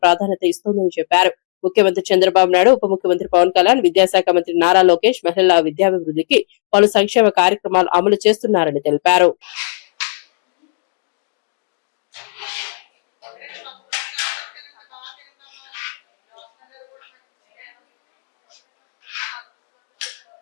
ప్రాధాన్యత ఇస్తోందని చెప్పారు. ముఖ్యమంత్రి చంద్రబాబు నాయుడు, ఉప ముఖ్యమంత్రి పవన్ కళ్యాణ్, విద్యాశాఖ మంత్రి నారా లోకేష్ మహిళల విద్యాభివృద్ధికి పలు సంక్షేమ కార్యక్రమాలు అమలు చేస్తున్నారని తెలిపారు.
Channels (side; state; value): right; silent; digital silence